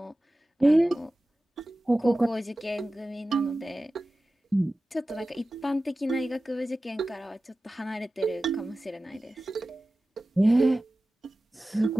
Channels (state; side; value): normal; both; correlation 0.96